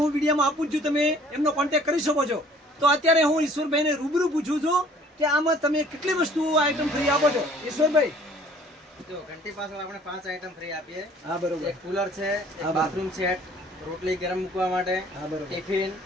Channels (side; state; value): both; normal; correlation 0.54